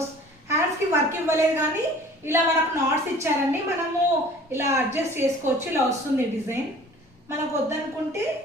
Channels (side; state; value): both; normal; correlation 0.47